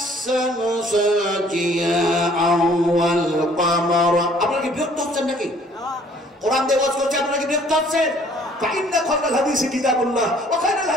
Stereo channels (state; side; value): normal; both; correlation 0.58